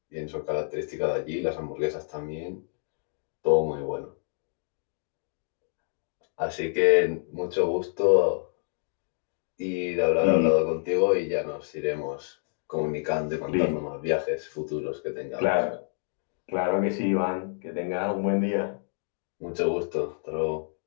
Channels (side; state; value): right; silent; digital silence